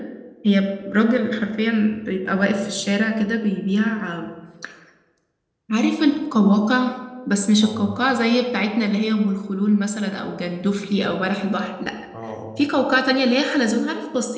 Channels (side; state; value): both; identical; correlation 1.00